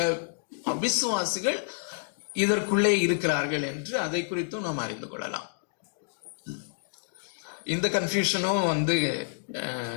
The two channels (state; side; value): silent; right; digital silence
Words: அவிசுவாசிகள் இதற்குள்ளே இருக்கிறார்கள் என்று அதை குறித்தும் நாம் அறிந்து கொள்ளலாம். இந்த கன்ஃபியூஷனும்